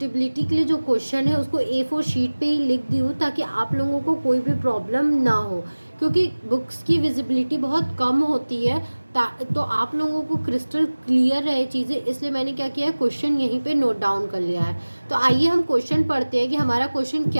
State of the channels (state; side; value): inverted; both; correlation -1.00